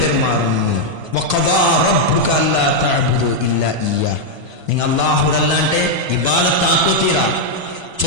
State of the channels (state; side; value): late; left; 1.3 ms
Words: വഖദാ റബ്ബുക അല്ലാ തഅബുദു ഇല്ലാ ഇയ്യാ നിങ്ങൾ അല്ലാഹുരല്ലാണ്ടെ ഇബാദത്ത് ആക്കോതീരാ